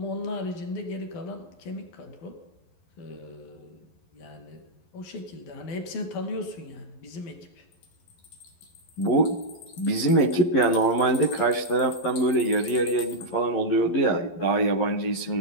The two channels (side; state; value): right; late; 12 ms